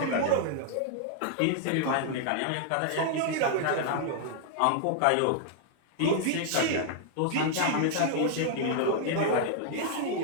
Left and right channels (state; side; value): different; both; correlation -0.01